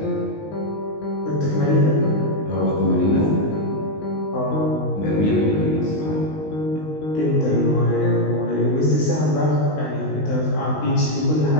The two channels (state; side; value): late; right; 19 ms